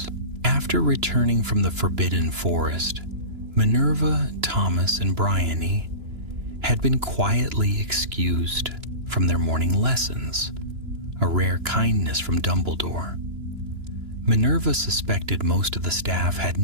After returning from the Forbidden Forest, Minerva, Thomas, and Bryony had been quietly excused from their morning lessons, a rare kindness from Dumbledore. Minerva suspected most of the staff had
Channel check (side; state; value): left; late; 2.9 ms